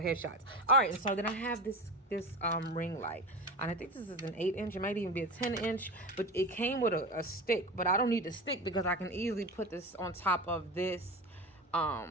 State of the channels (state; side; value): normal; both; correlation 0.28